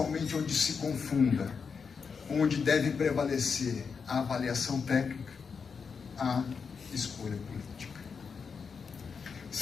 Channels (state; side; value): quieter; right; 5.7 dB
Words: onde se confunda, onde deve prevalecer a avaliação técnica, a escolha política.